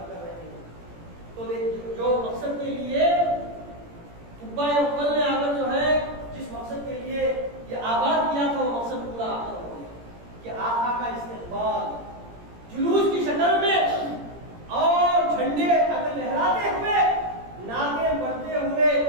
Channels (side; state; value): left; late; 17 ms